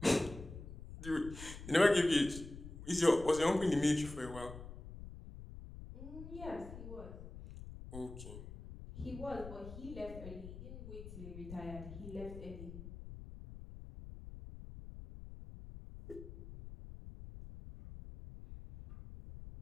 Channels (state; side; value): noise; left; rumble, 12 dB below the sound